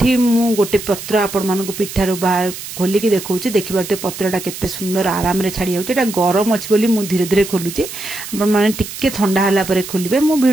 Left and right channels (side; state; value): right; noise; hiss, 10 dB below the sound